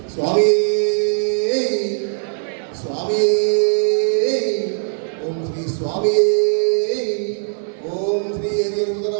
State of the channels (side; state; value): left; silent; 65 dB below the other